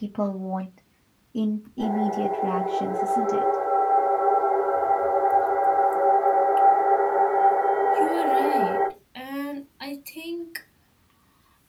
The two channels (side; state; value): both; identical; correlation 1.00